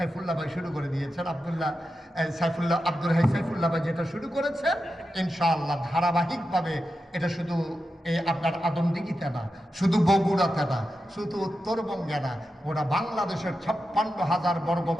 ভাই শুরু করে দিয়েছেন। আব্দুল হাই সাইফুল্লাহ ভাই যেটা শুরু করেছেন, ইনশাআল্লাহ ধারাবাহিকভাবে এটা শুধু আপনার আদমদিঘিতে না, শুধু বগুড়াতে না, শুধু উত্তরবঙ্গে না, ওরা বাংলাদেশের 56,000 বর্গ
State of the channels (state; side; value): normal; both; correlation 0.90